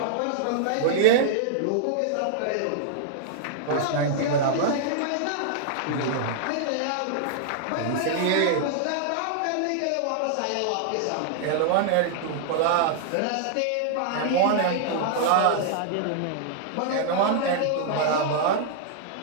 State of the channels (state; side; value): different; both; correlation -0.01